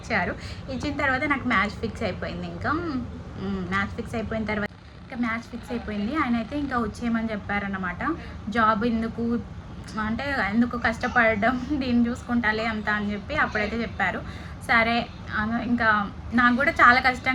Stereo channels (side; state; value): both; identical; correlation 1.00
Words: ఇచ్చిన తర్వాత నాకు మ్యాచ్ ఫిక్స్ అయిపోయింది. ఇంకా మ్యాచ్ ఫిక్స్ అయిపోయిన తర్వాత ఆయన అయితే ఇంకా వచ్చేయమని చెప్పారన్నమాట. జాబ్ ఎందుకు, అంటే ఎందుకు కష్టపడడం, దీన్ని చూసుకుంటాలే అంత అని చెప్పి అప్పుడైతే చెప్పారు. సరే ఇంకా నాకు కూడా చాలా